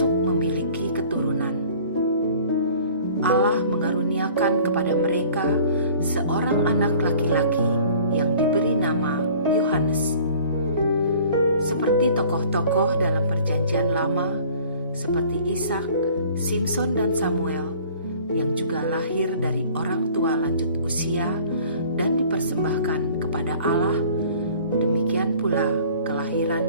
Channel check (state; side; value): inverted; both; correlation -0.49